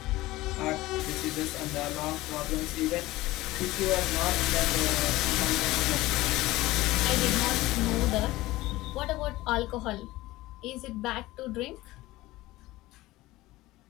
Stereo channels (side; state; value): right; quieter; 18.3 dB